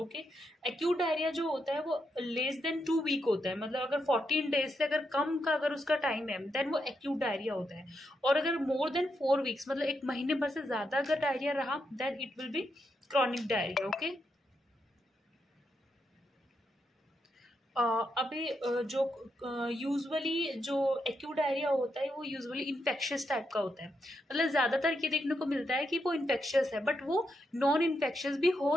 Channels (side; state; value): both; normal; correlation 0.82